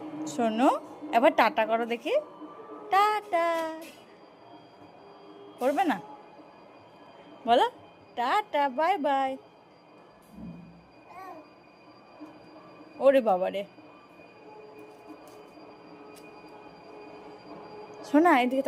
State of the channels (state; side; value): identical; both; correlation 1.00